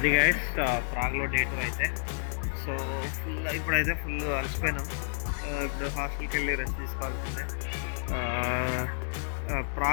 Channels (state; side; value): silent; right; 58 dB below the other